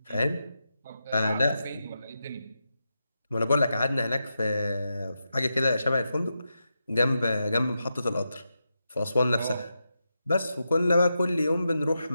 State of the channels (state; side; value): inverted; both; correlation -0.88